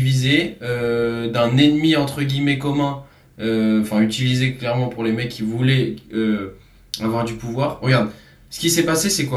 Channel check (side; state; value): both; identical; correlation 1.00